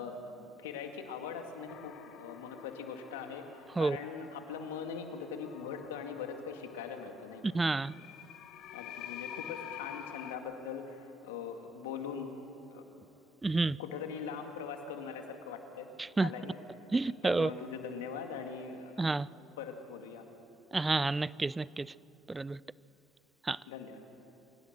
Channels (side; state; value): both; normal; correlation 0.75